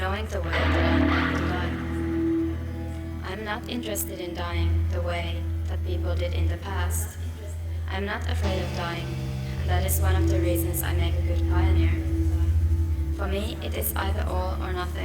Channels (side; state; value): both; identical; correlation 1.00